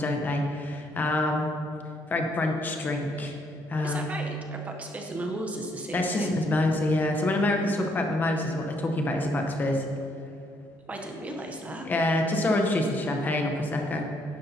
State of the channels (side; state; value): both; normal; correlation 0.71